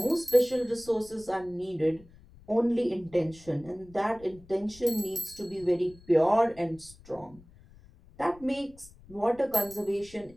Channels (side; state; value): left; noise; rumble, 24 dB below the sound